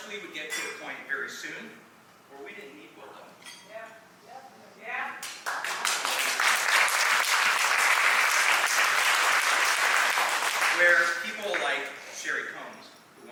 we would get to a point very soon where we didn't need Wlda. Yeah. Where people like Sherry Combs, who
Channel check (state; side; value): identical; both; correlation 1.00